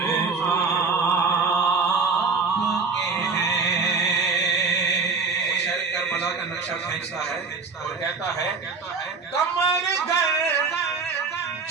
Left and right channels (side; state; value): left; quieter; 4.8 dB